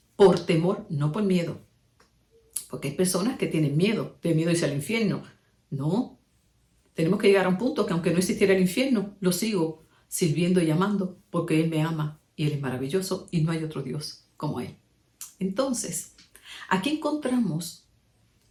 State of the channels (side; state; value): both; identical; correlation 1.00